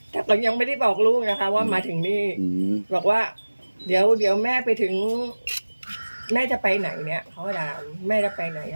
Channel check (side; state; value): both; inverted; correlation -1.00